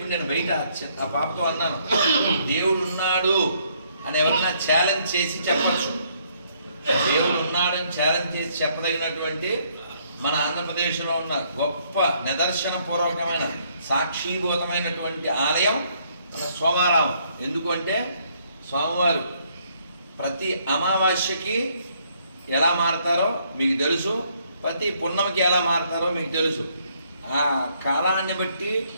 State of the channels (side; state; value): both; inverted; correlation -0.68